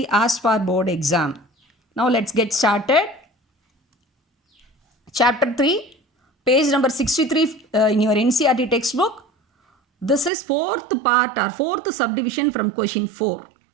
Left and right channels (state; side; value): drops out; left; at 10.3 s